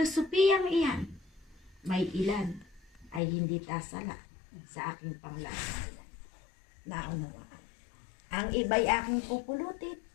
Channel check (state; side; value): drops out; right; at 3.2 s